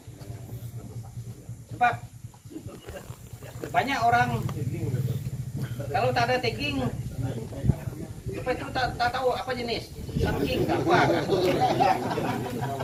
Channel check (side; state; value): both; identical; correlation 1.00